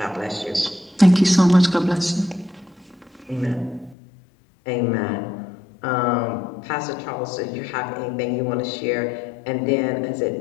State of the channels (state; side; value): drops out; right; at 4.0 s